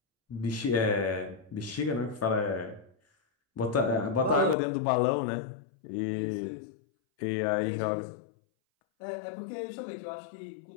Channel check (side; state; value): right; drops out; at 4.5 s